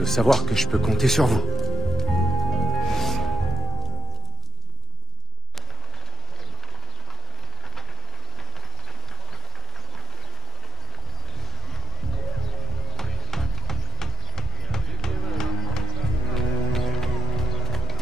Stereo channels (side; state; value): both; normal; correlation 0.66